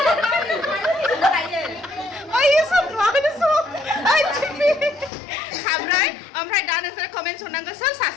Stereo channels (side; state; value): right; drops out; at 5.1 s